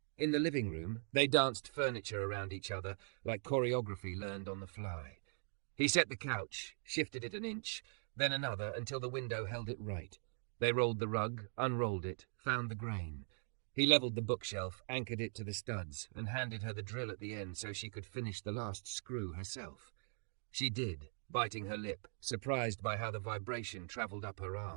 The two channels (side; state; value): left; silent; 50 dB below the other